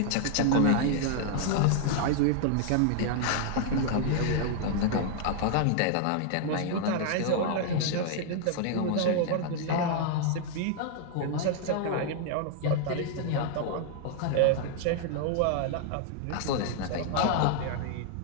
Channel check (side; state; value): both; different; correlation 0.00